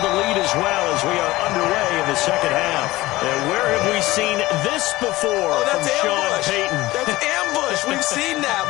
lead as well as we are underway in the second half. And where have we seen this before from Sean Payton? That's ambush. We've seen that.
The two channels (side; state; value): right; quieter; 18.5 dB